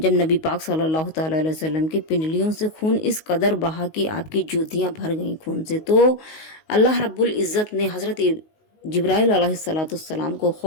जब नबी पाक सल्लल्लाहु अलैहि वसल्लम की पिंडलियों से खून इस कदर बहा कि आपकी जूतियां भर गईं खून से, तो अल्लाह रब्बुल इज़्ज़त ने हज़रत जिब्राइल अलैहिस्सलाम को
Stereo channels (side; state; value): right; late; 19 ms